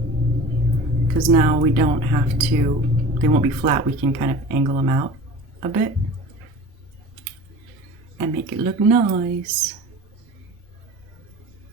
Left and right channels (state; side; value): normal; both; correlation 0.38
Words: because now we don't have to, they won't be flat. We can kind of angle them out a bit and make it look nice.